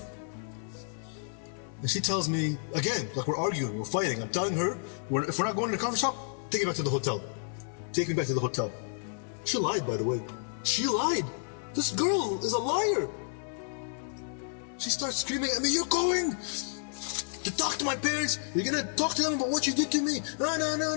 And she tells me, again, like we're arguing, we're fighting. I'm telling her, if we're not going to the coffee shop, take me back to the hotel. Take me back to the hotel. She lied, by the way. She lied. This girl is a liar. She starts screaming at me, you're going to talk to my parents. You're going to talk to them about what you did to me.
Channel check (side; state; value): right; silent; digital silence